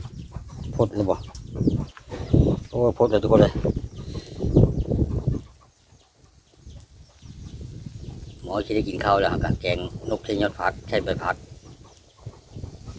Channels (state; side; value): identical; both; correlation 1.00